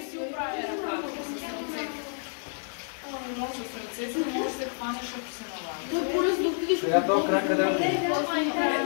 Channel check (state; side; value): silent; right; 59 dB below the other